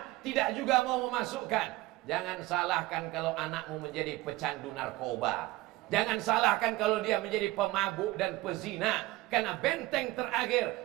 tidak juga mau memasukkan. Jangan salahkan kalau anakmu menjadi pecandu narkoba. Jangan salahkan kalau dia menjadi pemabuk dan pezina. Karena benteng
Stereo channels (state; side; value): quieter; left; 19.0 dB